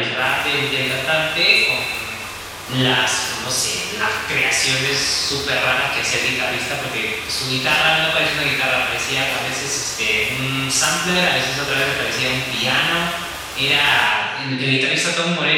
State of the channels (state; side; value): identical; both; correlation 1.00